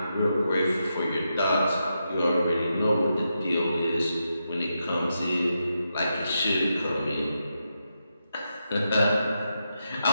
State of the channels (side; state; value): both; inverted; correlation -0.85